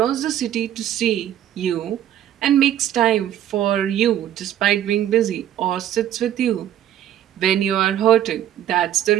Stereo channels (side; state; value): left; quieter; 11.3 dB